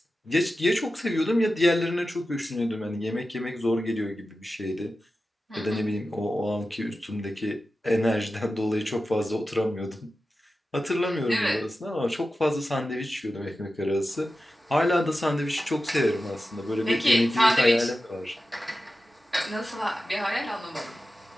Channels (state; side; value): normal; both; correlation 0.93